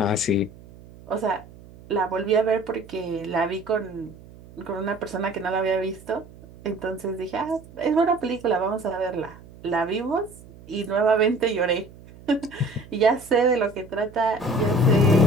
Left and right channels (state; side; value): noise; right; hum, 21 dB below the sound